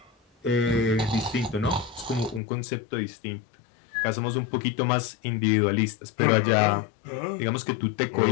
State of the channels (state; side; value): drops out; right; at 2.4 s